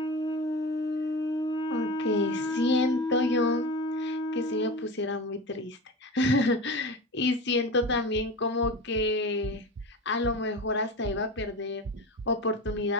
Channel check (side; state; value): both; normal; correlation 0.28